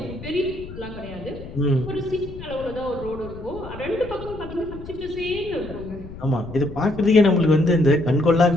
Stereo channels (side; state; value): left; noise; rumble, 13 dB below the sound